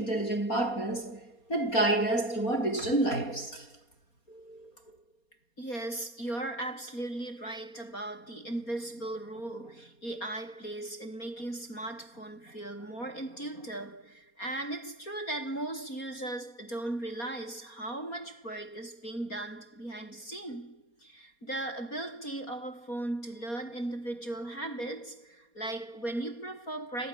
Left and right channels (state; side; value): late; right; 4.2 ms